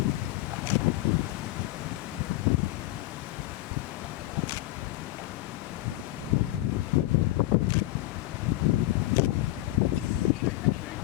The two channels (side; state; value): right; quieter; 17.3 dB